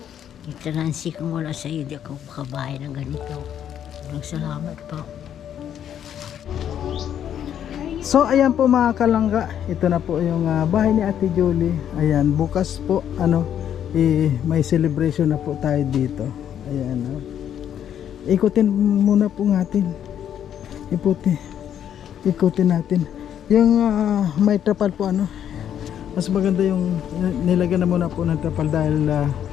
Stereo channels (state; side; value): quieter; right; 9.7 dB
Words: Ito Nancy, kung wala sa iyo, di ako makabahay ng ganito. Maraming salamat po. So ayan po mga kalangga, ito na po yung bahay ni Ate Julie. Ayan, bukas po may celebration na po tayo dito. Ayan. Ikutin muna po natin. Ikutin natin. Yung may trapal po mas maganda yung nilagyan na muna po ng trapal dahil